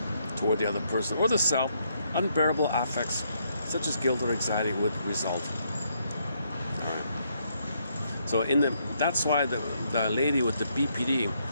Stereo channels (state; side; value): inverted; both; correlation -0.74